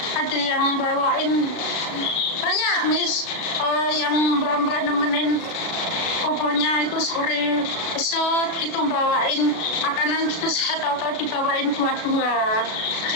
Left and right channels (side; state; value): right; late; 36 ms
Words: ada yang bawain banyak Miss, yang mbak-mbak nemenin pokoknya itu sore besok itu bawain makanan gitu, saya tahu dibawain buah-buah, ada